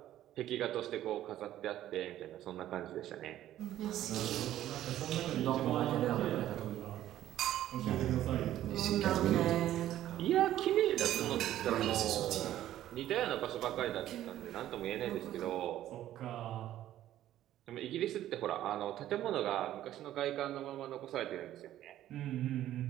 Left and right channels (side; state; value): left; quieter; 12.9 dB